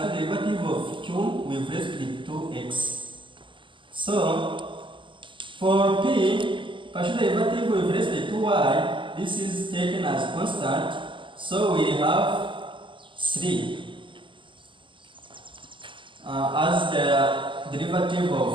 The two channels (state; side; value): late; left; 0.24 ms